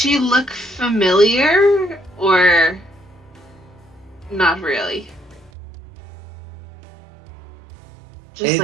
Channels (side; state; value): left; drops out; at 5.5 s